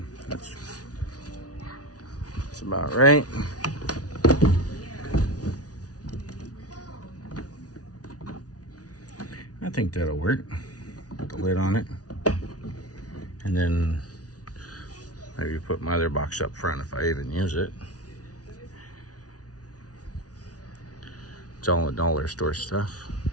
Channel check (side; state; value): right; late; 0.68 ms